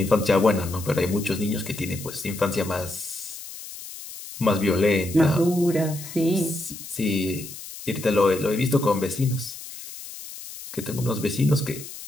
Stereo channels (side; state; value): left; noise; hiss, 13 dB below the sound